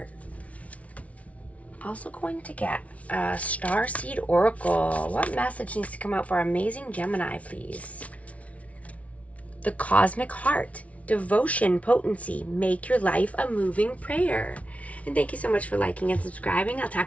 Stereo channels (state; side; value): late; right; 0.066 ms